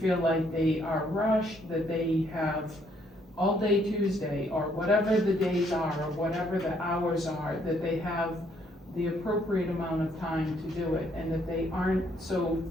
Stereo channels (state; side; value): normal; both; correlation 0.69